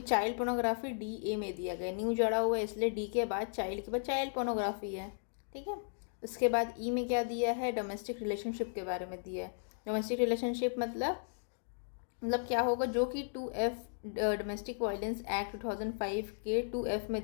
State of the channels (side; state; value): right; silent; digital silence